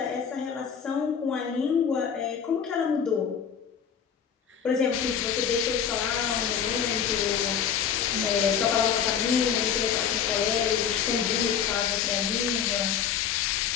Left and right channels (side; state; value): right; quieter; 7.8 dB